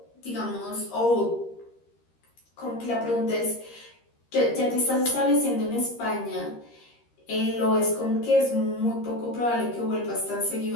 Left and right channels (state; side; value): late; right; 13 ms